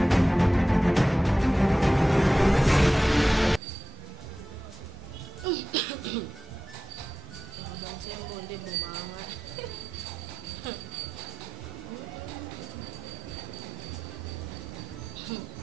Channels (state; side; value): normal; both; correlation 0.92